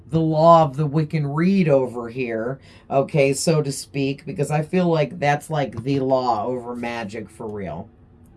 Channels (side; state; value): both; identical; correlation 1.00